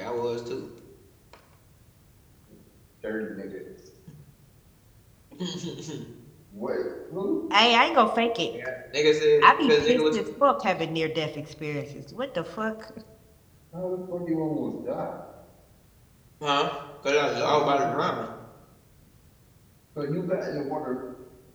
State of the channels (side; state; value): both; identical; correlation 1.00